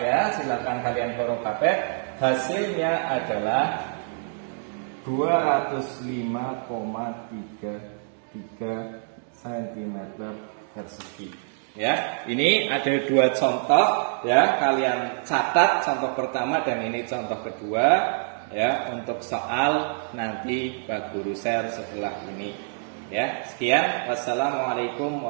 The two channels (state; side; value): silent; left; digital silence